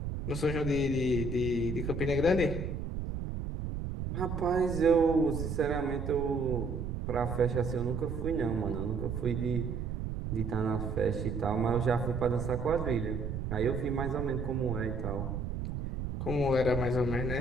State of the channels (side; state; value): right; noise; rumble, 4 dB below the sound